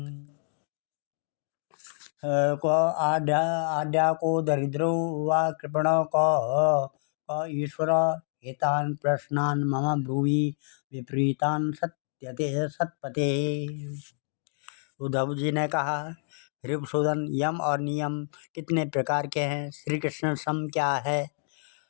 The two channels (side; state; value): right; silent; digital silence